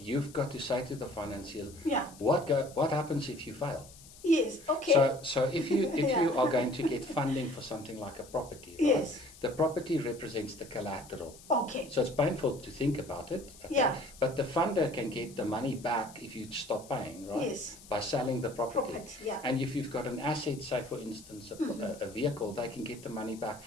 got to say to the financiers, what happens if you fail? Yes, okay. So if you are going to get funding for something like a property, right? The property represents the collateral. Okay. So it's painful to think about it. Okay? But the funder can get the money back if you stop paying, right? Yes. By selling the property. And if you've got an asset, say for instance a vehicle, they can get the money back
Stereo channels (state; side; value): noise; left; hiss, 20 dB below the sound